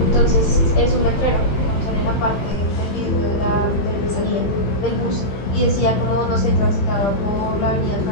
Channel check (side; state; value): right; late; 15 ms